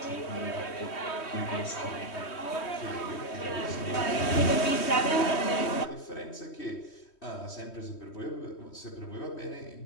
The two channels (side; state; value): right; late; 3.1 ms